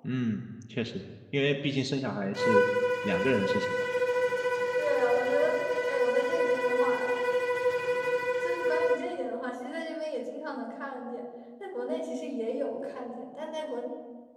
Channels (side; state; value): both; identical; correlation 1.00